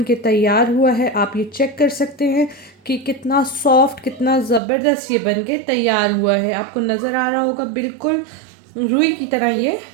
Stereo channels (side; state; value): left; drops out; at 4.6 s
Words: के तैयार हुआ है। आप ये चेक कर सकते हैं कि कितना सॉफ्ट, कितना ज़बरदस्त ये बन के तैयार हुआ है। आपको नज़र आ रहा होगा बिल्कुल रुई की तरह ये